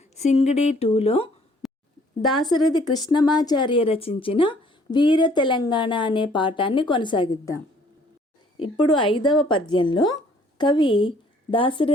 సింగిడి 2లో దాశరథి కృష్ణమాచార్య రచించిన వీర తెలంగాణ అనే పాఠాన్ని కొనసాగిద్దాం. ఇప్పుడు 5వ పద్యంలో కవి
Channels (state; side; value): normal; both; correlation 0.60